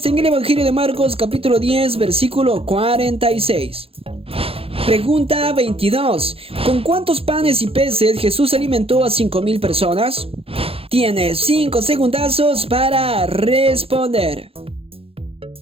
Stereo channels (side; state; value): left; late; 0.27 ms